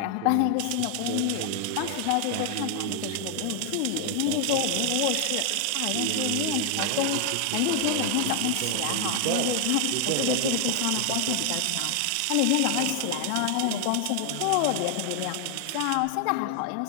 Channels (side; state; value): both; different; correlation 0.00